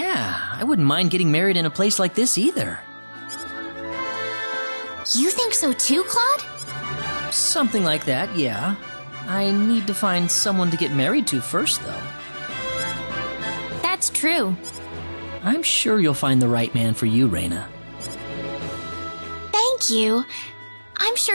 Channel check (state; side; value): inverted; both; correlation -1.00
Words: I wouldn't mind getting married in a place like this either. You think so too, Claude? Something like that, yeah. I need to find someone to get married to first, though. That's true. I'm sure you'll find the right man for you, Raina. Thank you. I'm